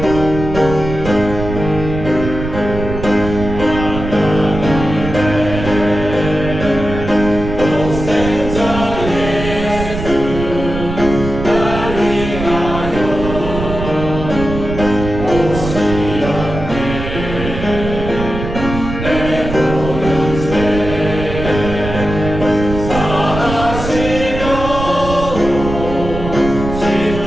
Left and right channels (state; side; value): noise; right; rumble, 7 dB below the sound